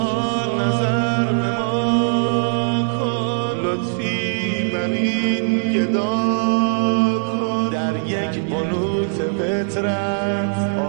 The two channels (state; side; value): silent; left; digital silence